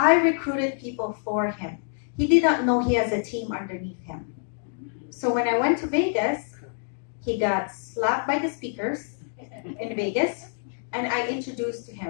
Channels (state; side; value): silent; right; 61 dB below the other